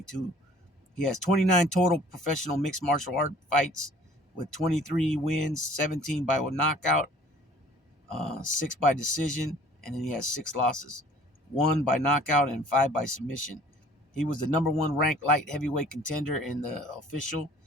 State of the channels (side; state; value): both; normal; correlation 0.52